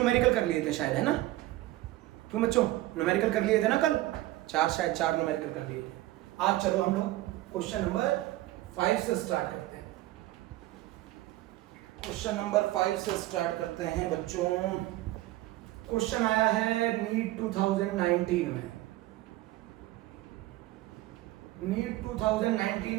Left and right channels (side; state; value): left; quieter; 16.9 dB